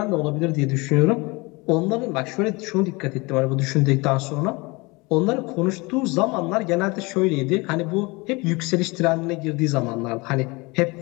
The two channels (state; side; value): quieter; right; 25.6 dB